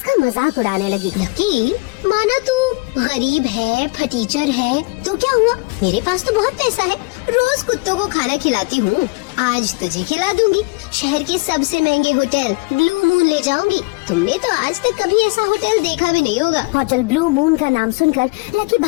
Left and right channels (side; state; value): right; quieter; 27.8 dB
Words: मजाक उड़ाने लगी। लकी माना तू गरीब है, फटीचर है, तो क्या हुआ, मेरे पास तो बहुत पैसा है, रोज कुत्तों को खाना खिलाती हूँ, आज तुझे खिला दूंगी। शहर के सबसे महंगे होटल ब्लू मून ले जाऊंगी। तुमने तो आज तक कभी ऐसा होटल देखा भी नहीं होगा। होटल ब्लू मून का नाम सुनकर लकी